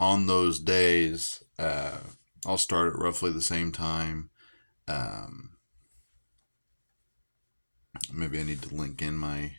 those days, I'll start at roughly the same time. Maybe I need to link in my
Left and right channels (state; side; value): inverted; both; correlation -1.00